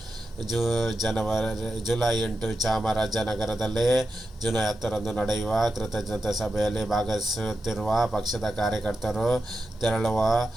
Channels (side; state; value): both; normal; correlation 0.89